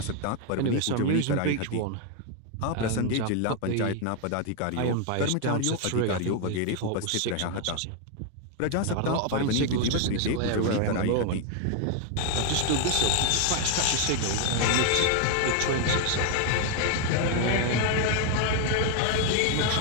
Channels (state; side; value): different; both; correlation 0.00